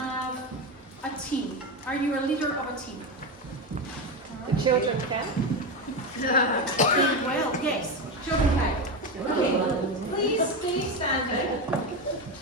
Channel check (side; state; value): both; normal; correlation 0.15